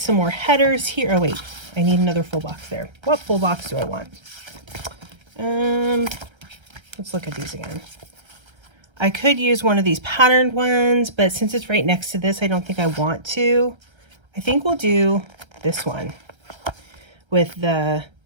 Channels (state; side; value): late; left; 1.3 ms